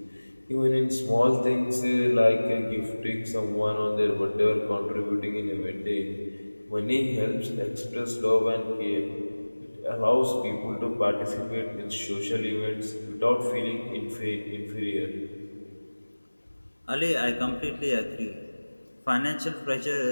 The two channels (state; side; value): inverted; both; correlation -1.00